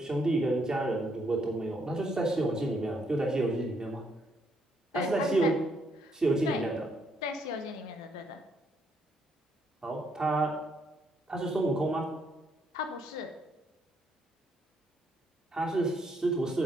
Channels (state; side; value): normal; both; correlation 0.72